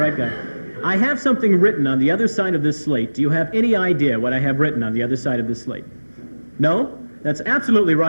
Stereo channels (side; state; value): both; inverted; correlation -1.00